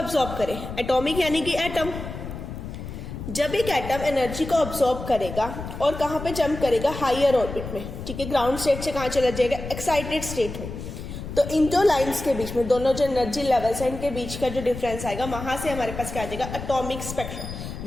करे, एटॉमिक यानी कि एटम, जब एक एटम एनर्जी को अब्सॉर्ब करेगा और कहां पे जंप करेगा, हायर ऑर्बिट में, ठीक है, ग्राउंड स्टेट से कहां चला जाएगा, एक्साइटेड स्टेट में। तो इन दो लाइंस के बीच में, दोनों जो एनर्जी लेवल्स है इनके बीच का जो डिफरेंस आएगा, वहां से हमारे पास क्या आ जाएगा, एटॉमिक स्पेक्ट्रा,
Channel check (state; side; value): noise; left; rumble, 9 dB below the sound